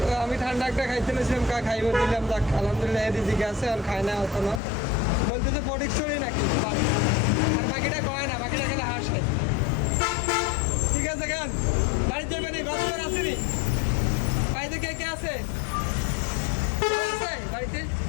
আমি ঠান্ডা একটা খাইতে নিয়েছিলাম খাইব দিলাম যাক আলহামদুলিল্লাহ এদিকে আছে আর খায় না এখনো বলতেছে ফটিকছড়ি নাকি আর বাকিটা কয় না বাকিটা খেলে হাসে ঠিক আছে গান বাড়িতে যাবে নি গতবার আসেনি বাড়িতে কে আছে বাড়িতে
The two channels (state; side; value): drops out; right; at 4.6 s